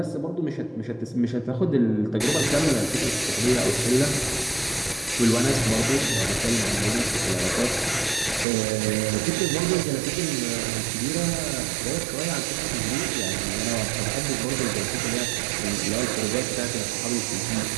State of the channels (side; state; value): left; drops out; at 8.5 s